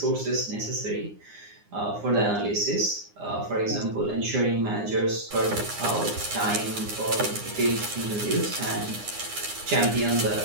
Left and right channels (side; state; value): left; late; 9.7 ms